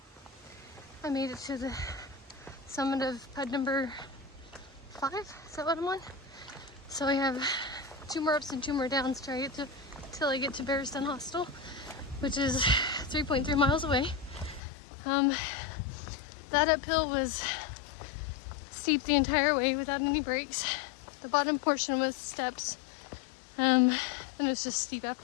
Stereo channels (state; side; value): drops out; right; at 14.6 s